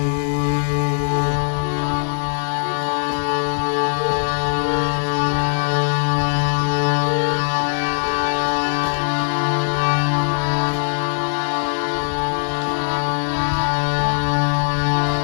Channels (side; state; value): right; silent; digital silence